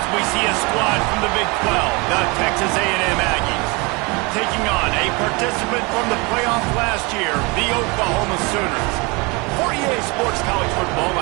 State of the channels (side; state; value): left; quieter; 27.6 dB